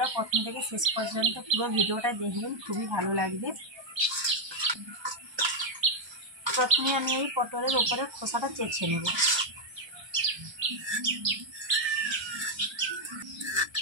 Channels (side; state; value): left; late; 1.3 ms